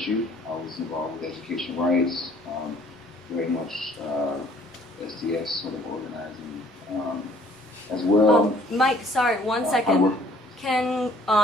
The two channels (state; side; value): normal; both; correlation 0.58